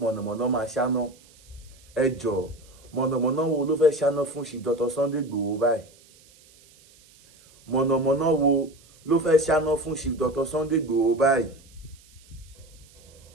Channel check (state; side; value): noise; right; hiss, 27 dB below the sound